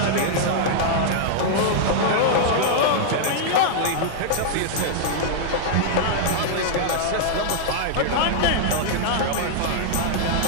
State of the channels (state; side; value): different; both; correlation -0.01